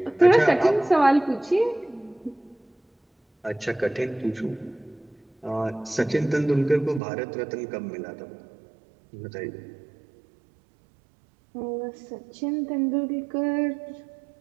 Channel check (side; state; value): left; drops out; at 7.0 s